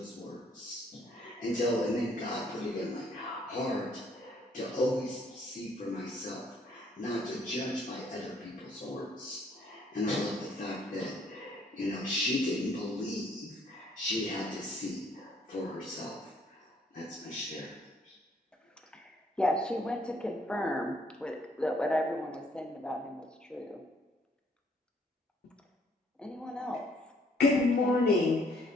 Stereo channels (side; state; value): both; normal; correlation 0.65